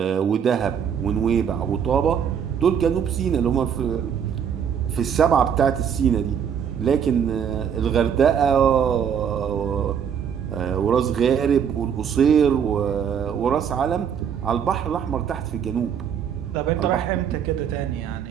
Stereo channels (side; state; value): left; quieter; 7.9 dB